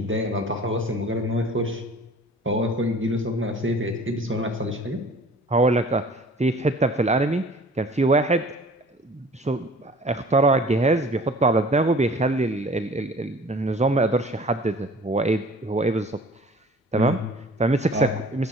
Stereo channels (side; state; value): both; normal; correlation 0.47